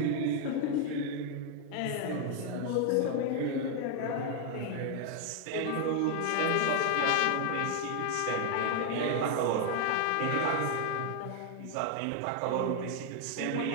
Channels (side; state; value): both; different; correlation 0.00